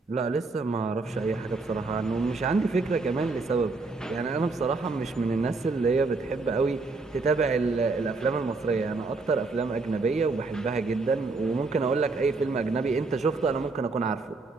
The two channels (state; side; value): quieter; left; 3.8 dB